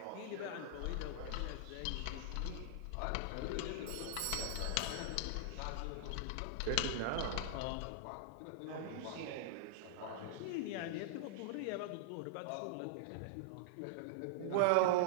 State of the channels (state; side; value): different; both; correlation -0.01